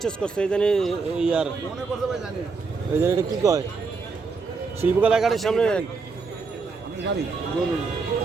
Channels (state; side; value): quieter; left; 4.6 dB